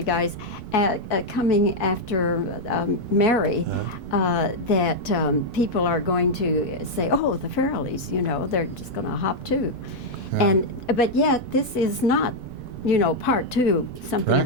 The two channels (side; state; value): right; noise; rumble, 17 dB below the sound